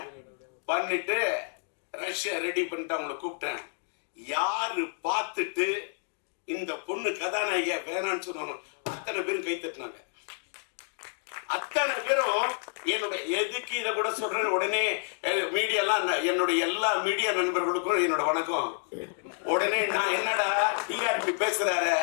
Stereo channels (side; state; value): right; silent; 58 dB below the other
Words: பண்ணிட்டு ரஷ்யா ரெடி பண்ணிட்டு அவங்களை கூப்பிட்டேன். யாரு பார்த்துட்டு இந்த பொண்ணு கதாநாயகியா வேணான்னு சொன்னாங்க, அத்தனை பேரும் கை தட்டினாங்க. அத்தனை பேரும் என்னுடைய எதுக்கு இதை கூட சொல்றேன், உடனே மீடியாலாம் என்னுடைய எல்லா மீடியா நண்பர்களுக்கும் என்னோட வணக்கம். உடனே நான் என்னடா டிஆர்பி பேசுறாரு,